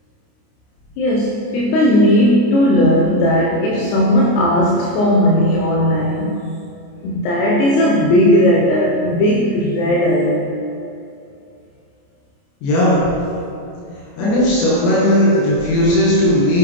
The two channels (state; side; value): late; right; 29 ms